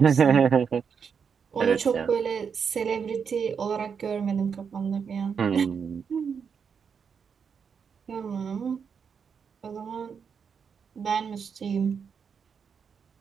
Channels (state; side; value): quieter; left; 6.5 dB